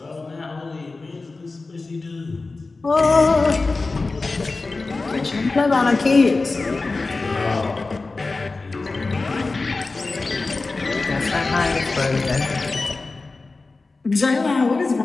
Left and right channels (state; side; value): quieter; right; 3.6 dB